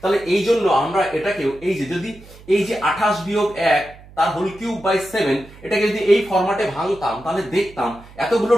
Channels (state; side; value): noise; right; hum, 21 dB below the sound